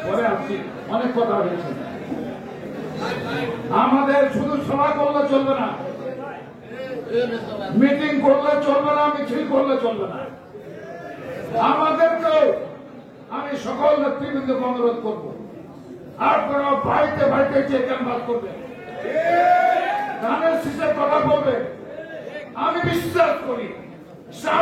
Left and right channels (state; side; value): identical; both; correlation 1.00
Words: পরে আসছি, অনেক কথা হয়েছে। আমাদের শুধু সভা করলে চলবে না, মিটিং করলে চলবে না, মিছিল করলে চলবে না। আমাদেরকেও আমি সকল নেতৃবৃন্দকে অনুরোধ করব, আপনারা বাড়িতে বাড়িতে যে ক্যাম্পাস করবেন, ধানের শীষের কথা বলবেন। আমি বিশ্বাস করি